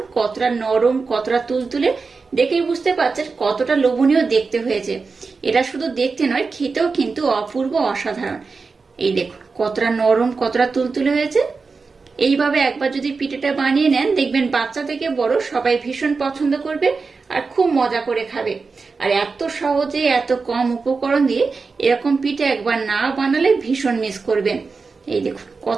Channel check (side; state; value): left; quieter; 4.5 dB